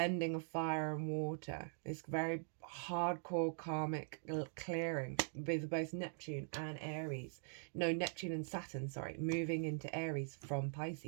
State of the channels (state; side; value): silent; left; digital silence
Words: of fire and water, this very hardcore karmic clearing with both Neptune and Aries. No, Neptune and Saturn, sorry, moving into Aries from